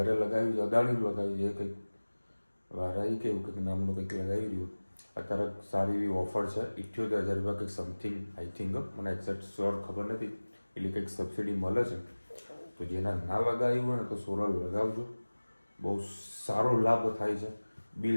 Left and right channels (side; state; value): both; inverted; correlation -1.00